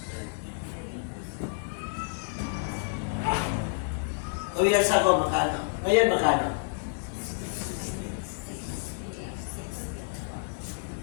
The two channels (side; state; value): right; silent; digital silence